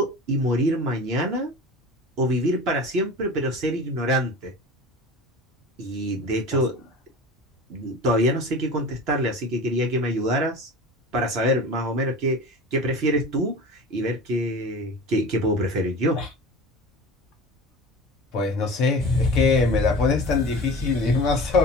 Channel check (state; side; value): normal; both; correlation 0.35